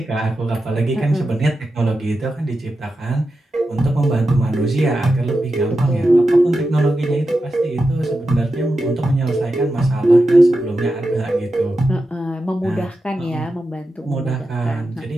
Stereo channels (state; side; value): normal; both; correlation 0.90